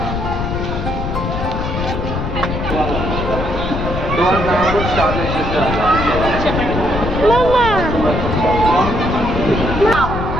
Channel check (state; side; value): noise; left; rumble, 4 dB below the sound